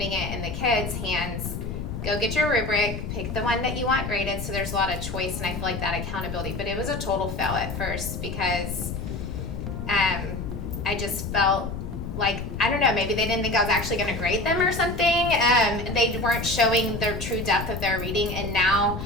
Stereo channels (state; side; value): noise; left; rumble, 6 dB below the sound